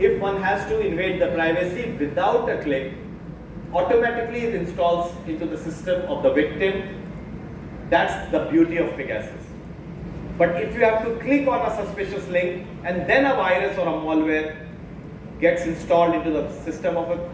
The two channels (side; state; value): both; identical; correlation 1.00